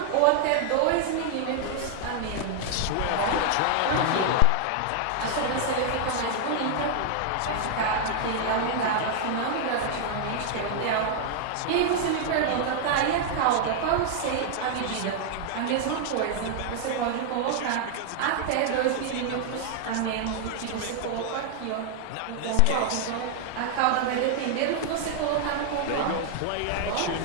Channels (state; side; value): different; both; correlation 0.00